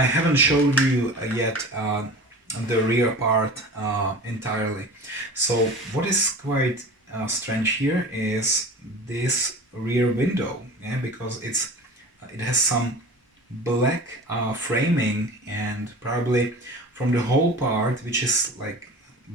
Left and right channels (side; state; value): both; normal; correlation 0.37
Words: haven't showed you yet the rear part entirely. So what is quite strange here is this rear window, yeah, because it has some black framing, and probably from the whole part, which is like